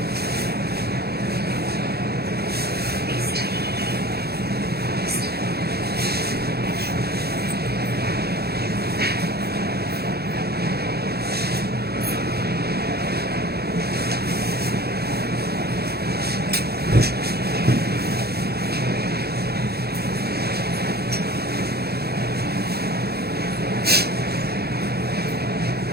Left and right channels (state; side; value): late; left; 0.46 ms